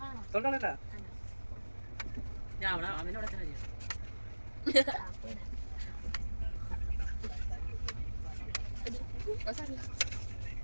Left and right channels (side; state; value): both; inverted; correlation -1.00